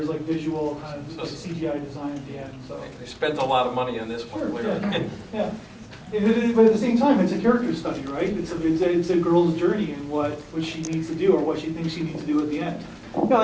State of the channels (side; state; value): both; identical; correlation 1.00